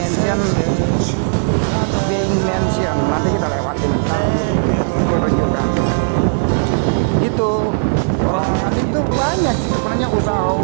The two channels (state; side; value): silent; left; digital silence